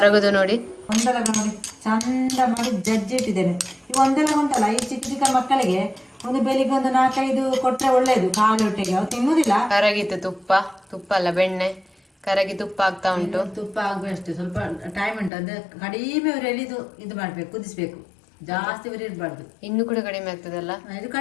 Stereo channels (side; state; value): right; drops out; at 15.3 s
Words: ನೋಡಿ. ಒಂದೆಲಗ ನೋಡಿ ಚಂದ ಮಾಡಿ ಜಜ್ಜಿ ಇಟ್ಟಿದ್ದೇನೆ. ಈ ಒಂದೆಲಗ ಉಂಟಲ್ಲ, ಈ ಚಿಕ್ಕ ಚಿಕ್ಕ ಮಕ್ಕಳಿಗೆ ಒಂದು ಬೆಳಿಗ್ಗೆ ಒಂದು 4-5 ಕೊಟ್ರೆ ಒಳ್ಳೇದು, ಖಾಲಿ ಹೊಟ್ಟೆಗೆ. ಅವ್ರು ತಿನ್ನುದಿಲ್ಲ. ಕರಗಿತ್ತು ತುಪ್ಪ ಅಲ್ಲ ಬೆಣ್ಣೆ, ಕರಗಿ ತುಪ್ಪ ಆಗ್ತಾ ಉಂಟು. ತುಪ್ಪ ಆಗುವಷ್ಟು ಸ್ವಲ್ಪ ಟೈಮ್ ಉಂಟು. ಅಂದ್ರೆ ಕಡಿಮೆ ಉರಿಯಲ್ಲಿ ಇದು ಮಾಡ್ಬೇಕು, ಕುದಿಸ್ಬೇಕು. ಜಾಸ್ತಿ ಉರಿ ಇರಬಾರ್ದು. ಇನ್ನು ಕೂಡ ಕಡಿಮೆ ಆಗ್ತದಲ್ಲ, ಇದು